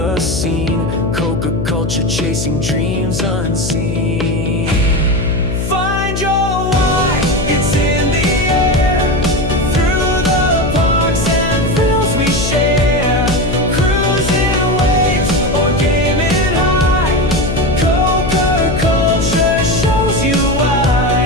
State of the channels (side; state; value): left; noise; hum, 3 dB below the sound